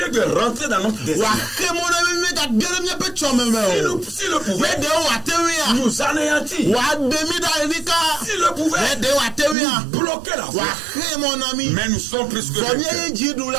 de rentrer dans notre destin. S'il le pouvait, nous anéantir. S'il le pouvait, nous bloquer la voie. Mais nous sommes plus que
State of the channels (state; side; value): drops out; left; at 9.6 s